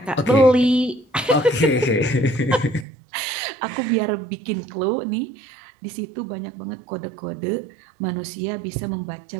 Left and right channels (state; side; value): drops out; left; at 2.9 s